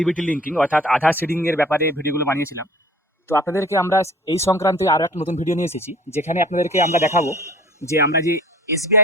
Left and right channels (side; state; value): both; normal; correlation 0.47